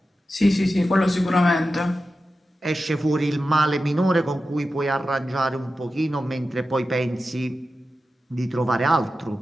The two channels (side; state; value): both; normal; correlation 0.92